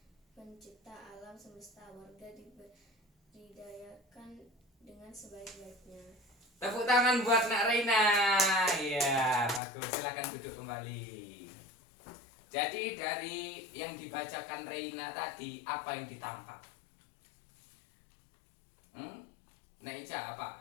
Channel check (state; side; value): drops out; right; at 9.6 s